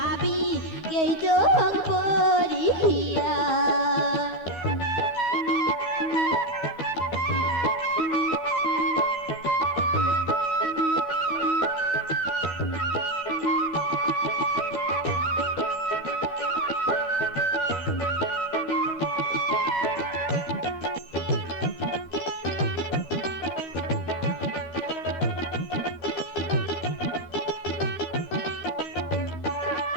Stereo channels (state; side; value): late; right; 12 ms